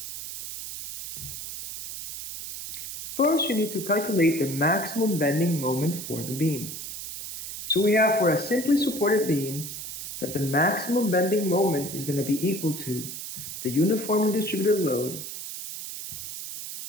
First, you need to calculate the maximum bending moment for the beam. So we have for a simply supported beam that the maximum bending moment is going to be equal to the uniformly distributed load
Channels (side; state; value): right; noise; hiss, 8 dB below the sound